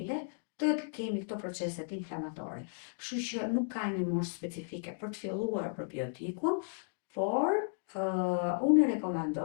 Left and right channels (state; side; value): silent; right; digital silence